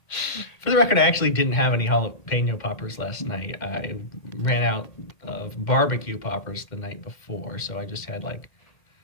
For the record, I actually didn't have any jalapeno poppers last night. I ran out of barbecue poppers the night before, so I just had like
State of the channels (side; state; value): right; late; 2.1 ms